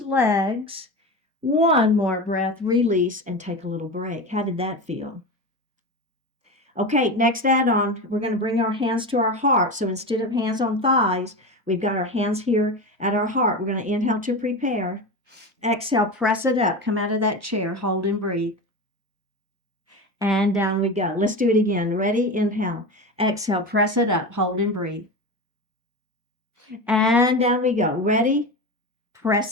One more breath, release, and take a little break. How did that feel? Okay, next add-on, we're going to bring our hands to our heart. So instead of hands on thighs, we've got our hands here at our heart. We're going to inhale to prepare. Exhale, press it up. Come out of that chair. Hold and breathe. And down we go. Let's do it again. Ready? Inhale. Exhale. Press it up. Hold and breathe. And down we go. Ready?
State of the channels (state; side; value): normal; both; correlation 0.24